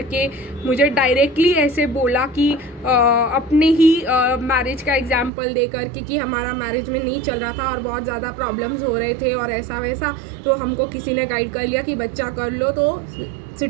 के मुझे डायरेक्टली ऐसे बोला कि अपने ही मैरिज का एग्जाम्पल दे करके कि हमारा मैरिज में नहीं चल रहा था और बहुत ज़्यादा प्रॉब्लम्स हो रहे थे और ऐसा वैसा, तो हमको किसी ने गाइड कर लिया कि बच्चा कर लो तो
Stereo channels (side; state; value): left; drops out; at 5.3 s